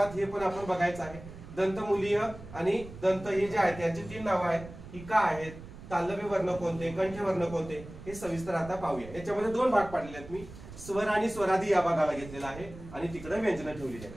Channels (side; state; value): right; noise; rumble, 15 dB below the sound